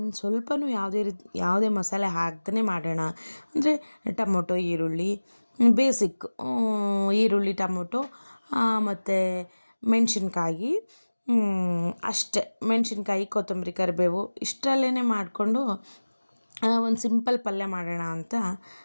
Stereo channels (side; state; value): both; inverted; correlation -1.00